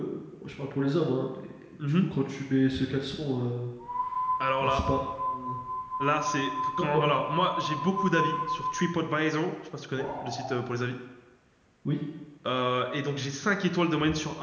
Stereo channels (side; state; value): both; identical; correlation 1.00